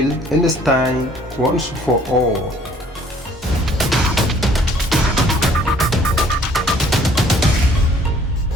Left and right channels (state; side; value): normal; both; correlation 0.58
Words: understand once for all.